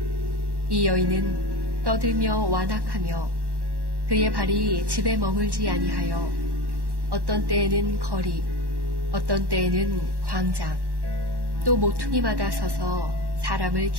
이 여인은 떠들며 완악하며 그의 발이 집에 머물지 아니하여 어떤 때에는 거리, 어떤 때에는 광장, 또 모퉁이마다 서서 사람을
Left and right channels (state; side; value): late; left; 1.1 ms